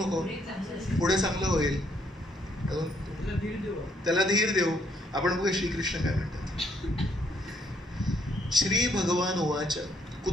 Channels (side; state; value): both; normal; correlation 0.70